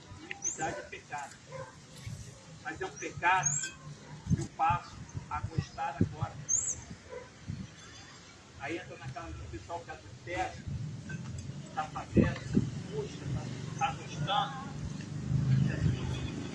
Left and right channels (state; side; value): identical; both; correlation 1.00